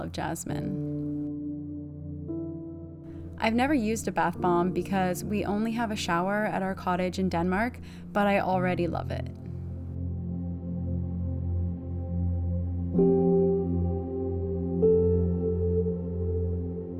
jasmine. I've never used a bath bomb because we only have a shower at our cottage in Denmark, but I already love it.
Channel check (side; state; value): both; identical; correlation 1.00